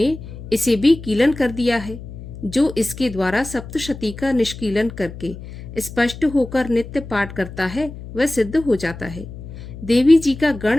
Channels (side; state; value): left; noise; hum, 13 dB below the sound